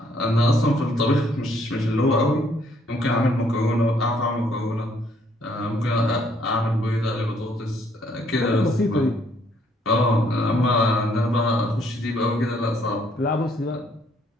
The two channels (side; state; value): both; normal; correlation 0.67